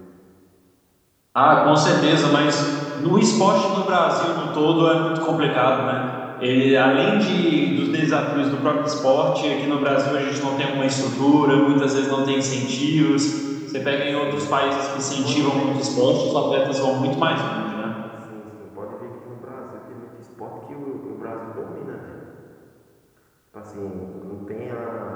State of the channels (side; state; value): both; identical; correlation 1.00